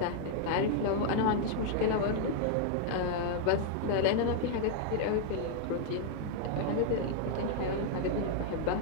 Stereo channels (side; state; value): both; different; correlation 0.00